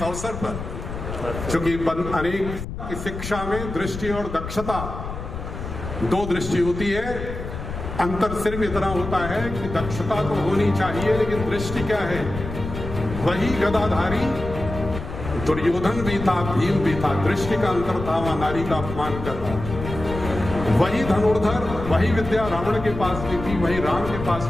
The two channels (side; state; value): left; noise; rumble, 8 dB below the sound